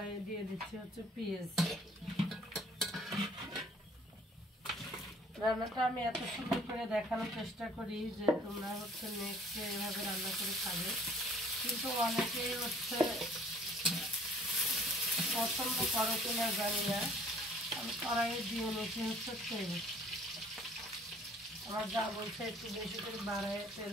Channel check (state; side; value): normal; both; correlation 0.56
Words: দিয়ে দিচ্ছি হচ্ছে পেঁয়াজ। রান্নাটা আমি এত সুন্দর করে দেখানোর চেষ্টা করি যে তোমরা হচ্ছে নেক্সট এভাবে রান্না করে খাবে, কিন্তু অনেকেই হচ্ছে পছন্দ করো কিনা জানি না। আমি কড়াইয়ে দিয়ে নিচ্ছি হচ্ছে তেল। আমার যা বলছে একটু বেশি করে বাড়ায় তেল